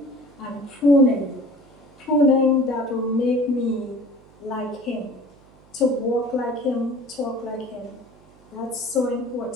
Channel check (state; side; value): noise; right; hum, 28 dB below the sound